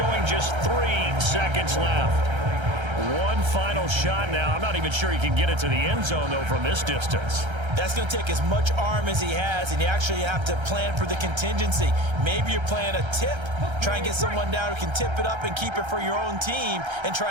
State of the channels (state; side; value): late; left; 1.3 ms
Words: just 3 seconds left. One final shot now. I'm not even sure he can get it to the end zone, though, from this distance. That's going to take as much arm as he has, and you actually have to plan for the contingency. Maybe you're playing a tip. Try and get someone down who can tip it up and keep it for your own team and